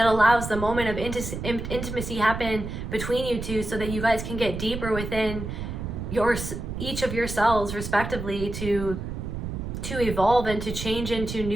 the moment of intimacy happen between you two, so that you guys can get deeper within each of yourselves respectively to evolve and to change into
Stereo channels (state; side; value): noise; right; rumble, 6 dB below the sound